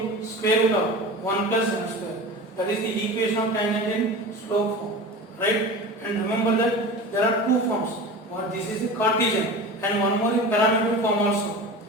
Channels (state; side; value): normal; both; correlation 0.32